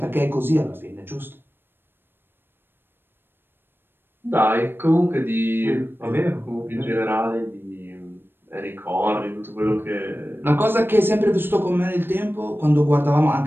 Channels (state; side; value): late; left; 0.10 ms